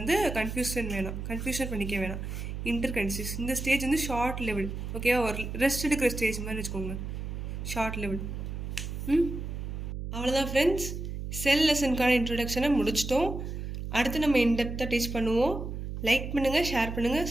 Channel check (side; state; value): right; noise; hum, 6 dB below the sound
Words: கன்ஃபியூஷன் பண்ணிக்க வேணாம். இன்டர்கைனசிஸ் இந்த ஸ்டேஜ் வந்து ஷார்ட் லெவல். ஓகேவா? ஒரு ரெஸ்ட் எடுக்கிற ஸ்டேஜ் மாதிரி வச்சுக்கோங்க, ஷார்ட் லெவல். அவ்வளோதான் ஃப்ரெண்ட்ஸ், செல் லெசனுக்கான இன்ட்ரொடக்ஷனை முடிச்சிட்டோம். அடுத்து நம்ம இன்டெப்த்தாக டீச் பண்ணுவோம். லைக் பண்ணுங்கள், ஷேர் பண்ணுங்கள்,